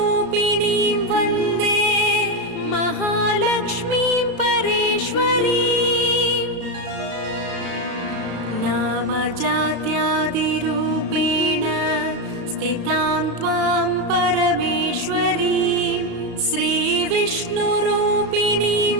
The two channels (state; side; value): late; left; 34 ms